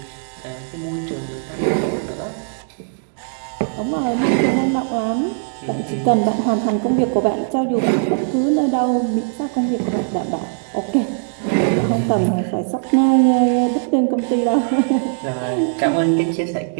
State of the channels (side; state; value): left; silent; digital silence